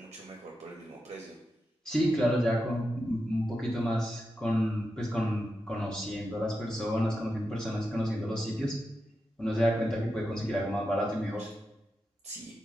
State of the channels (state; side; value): normal; both; correlation 0.88